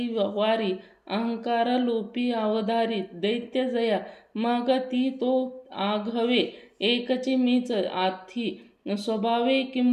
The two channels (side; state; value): both; identical; correlation 1.00